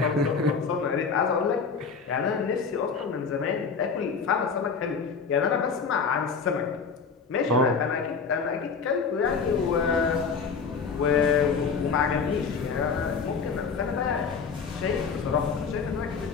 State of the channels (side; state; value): right; quieter; 5.4 dB